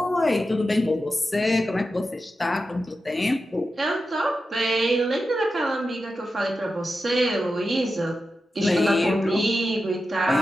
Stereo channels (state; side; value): normal; both; correlation 0.90